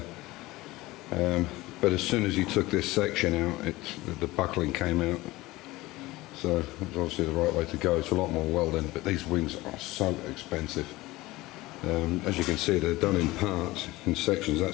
But as soon as he took this section out, the buckling came out. So it was obviously the right way to go. It's a lot more welding, but these wings are so expensive. As you can see, they're done in parts, in sections.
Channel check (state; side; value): quieter; right; 19.5 dB